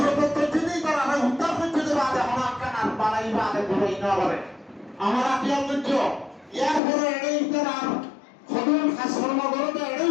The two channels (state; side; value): drops out; right; at 6.8 s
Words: করছে নেই তারা উদ্ধার করতে দেবে আগে হনাক্কান আর বাড়াইবা আগে ঘুরাই না বলে আমরা কি করছ এরপরে এড়েই তার সদুল খাস কর্মকরতে এড়েই